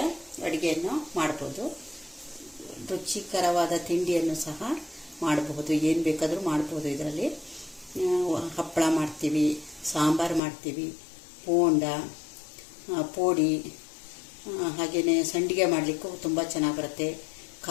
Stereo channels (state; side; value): drops out; right; at 10.4 s